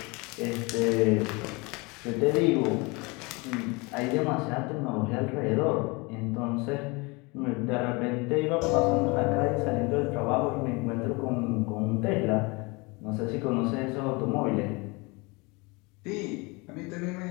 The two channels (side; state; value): right; quieter; 26.9 dB